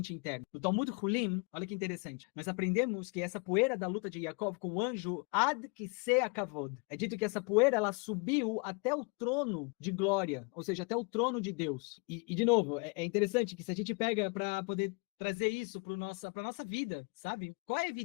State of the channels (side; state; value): right; quieter; 31.9 dB